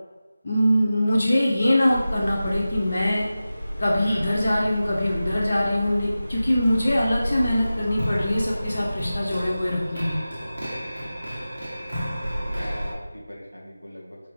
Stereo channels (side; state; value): both; inverted; correlation -0.95